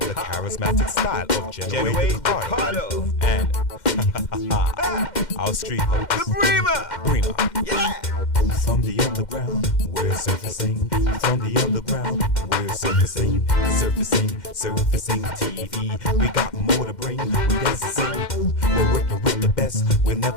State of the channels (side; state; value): right; late; 2.1 ms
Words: charismatic style of Genoa Ricardo. And our street host, The Bremer. Yeah. From the underground, we're surfacing. From the underground, we're surfacing. Surfacing TV. We got more to bring. We dance and sing. We're working with the best. We'll